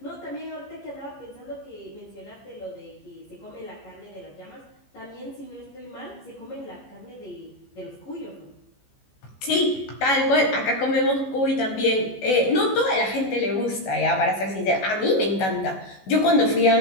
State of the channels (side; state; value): right; late; 14 ms